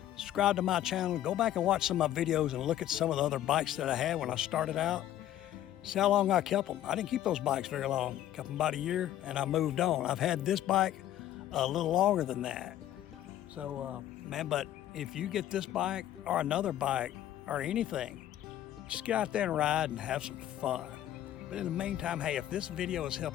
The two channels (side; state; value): right; quieter; 12.5 dB